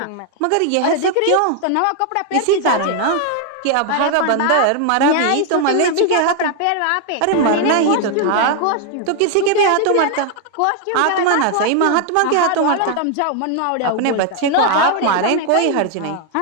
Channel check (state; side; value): different; both; correlation 0.00